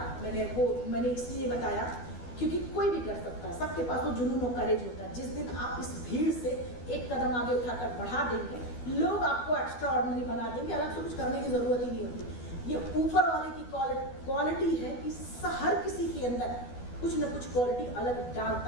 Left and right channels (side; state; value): right; late; 12 ms